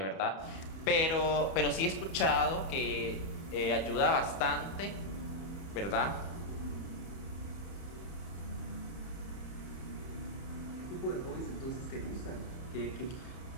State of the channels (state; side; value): late; right; 30 ms